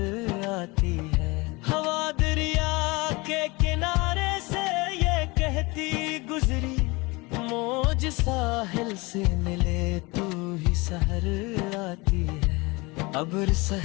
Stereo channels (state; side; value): quieter; right; 24.8 dB